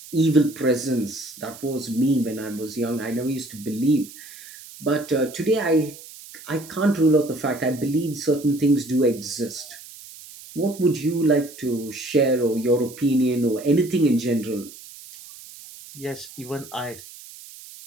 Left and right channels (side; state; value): right; noise; hiss, 17 dB below the sound